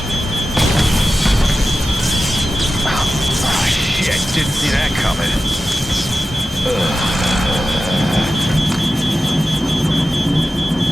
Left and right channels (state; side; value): normal; both; correlation 0.94